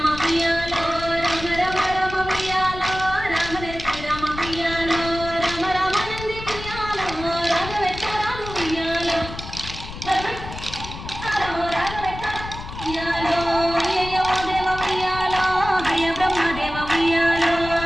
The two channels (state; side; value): noise; left; rumble, 11 dB below the sound